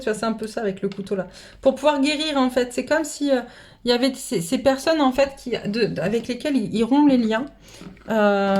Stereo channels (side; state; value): both; identical; correlation 1.00